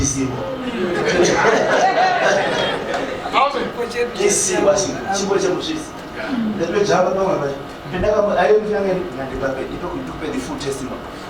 Kesi basi chipo cha mshisi. Ndio jamba kama basi. Penda kama ayo mfyange ngandibape itokupe the full testimony.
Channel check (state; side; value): identical; both; correlation 1.00